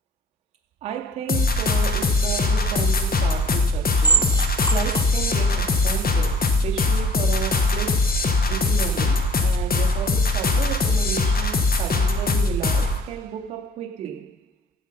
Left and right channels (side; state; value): both; normal; correlation 0.52